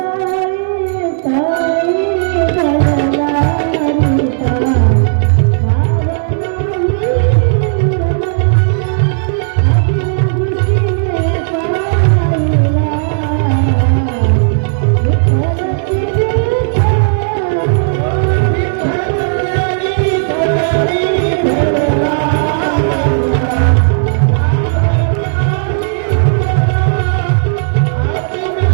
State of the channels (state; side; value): silent; left; digital silence